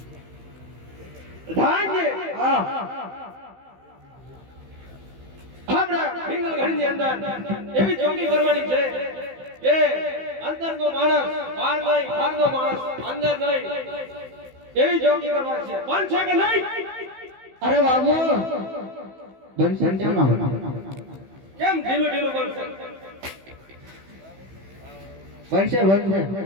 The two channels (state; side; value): late; left; 15 ms